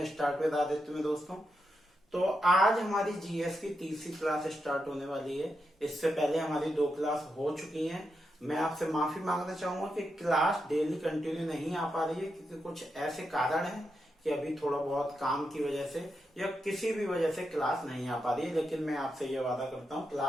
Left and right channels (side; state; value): both; normal; correlation 0.85